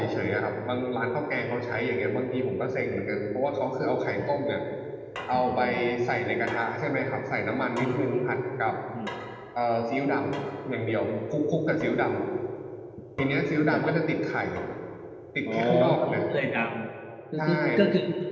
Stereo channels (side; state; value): both; identical; correlation 1.00